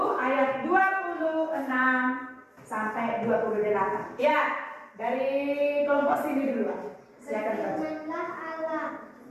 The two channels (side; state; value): both; identical; correlation 1.00